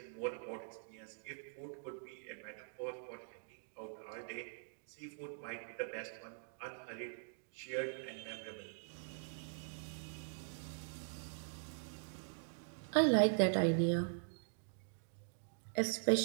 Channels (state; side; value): silent; left; digital silence